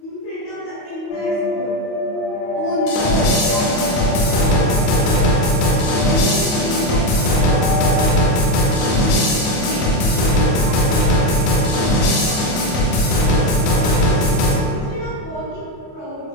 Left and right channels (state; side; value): late; right; 28 ms